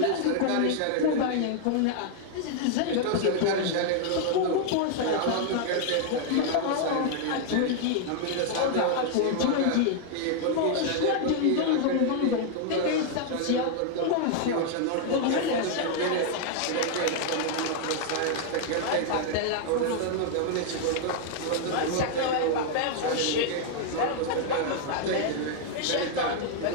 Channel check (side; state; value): both; different; correlation 0.00